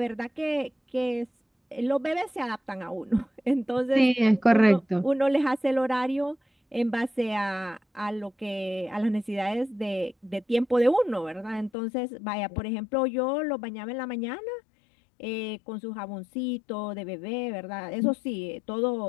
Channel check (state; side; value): drops out; right; at 11.7 s